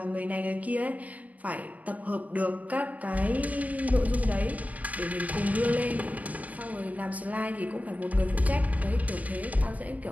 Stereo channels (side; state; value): left; late; 0.071 ms